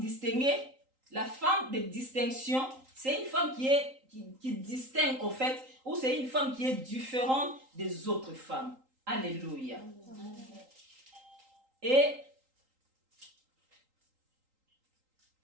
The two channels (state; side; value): late; left; 3.8 ms